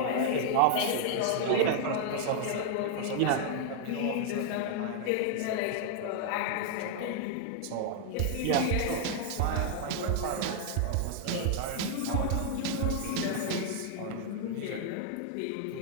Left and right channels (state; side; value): different; both; correlation 0.00